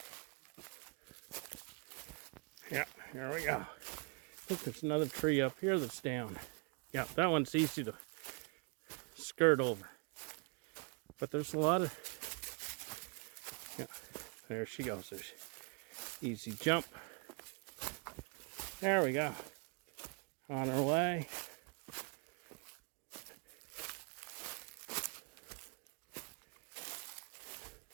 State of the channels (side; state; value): left; quieter; 34.6 dB